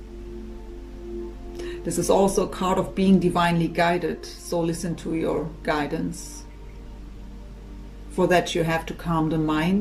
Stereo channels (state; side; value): identical; both; correlation 1.00